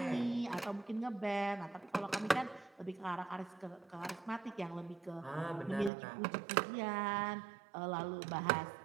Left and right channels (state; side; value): drops out; left; at 5.9 s